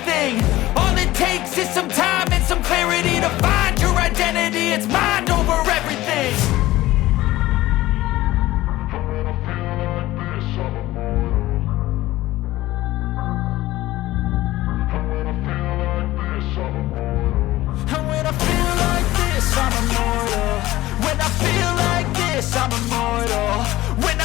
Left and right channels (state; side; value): quieter; right; 16.7 dB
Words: All it takes is some time and some clarity to find your identity. It's mind over everything. I'm immortal. When I feel like this, I'm immortal. When